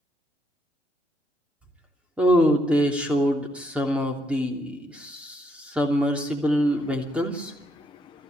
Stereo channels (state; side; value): normal; both; correlation 0.75